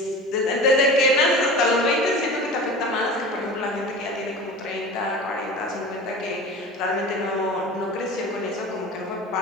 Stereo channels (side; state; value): both; normal; correlation 0.35